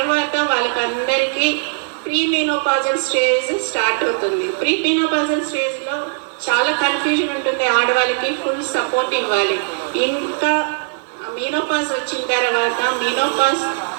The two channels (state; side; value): silent; left; digital silence